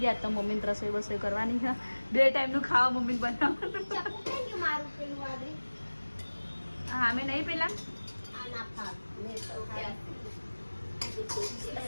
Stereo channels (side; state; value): both; inverted; correlation -1.00